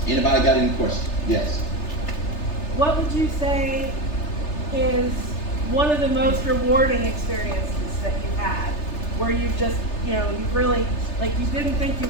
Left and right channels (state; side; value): late; right; 3.3 ms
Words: Anybody got any questions? Yes. What would you say is one of the most rewarding experiences that you've had, where you've just, you've really, like, you didn't think you